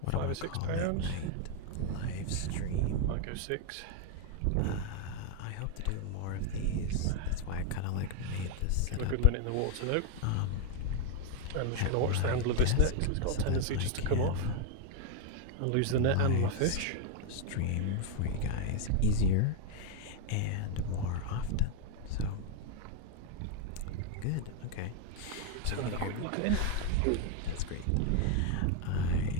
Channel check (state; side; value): different; both; correlation 0.01